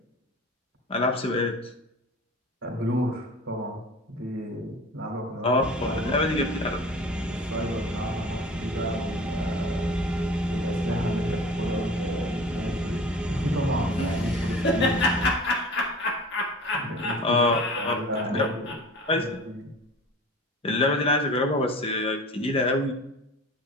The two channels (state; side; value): normal; both; correlation 0.40